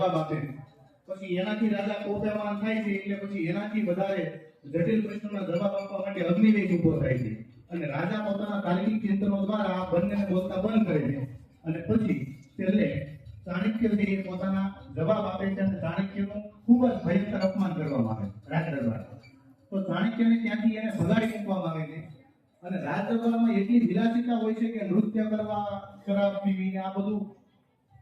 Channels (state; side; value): identical; both; correlation 1.00